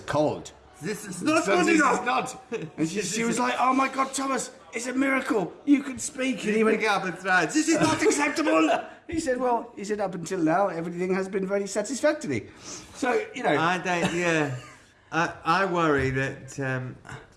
This is not good enough." And she was like, "Oh my God, Thomas, it's a miracle. You can speak." And he went, "This is not acceptable." He said, up until now, everything has been very satisfactory. So, I don't, I worry that,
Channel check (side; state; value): both; identical; correlation 1.00